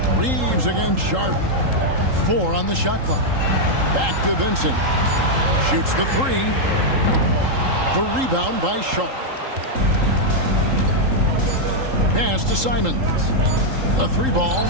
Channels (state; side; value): late; left; 3.8 ms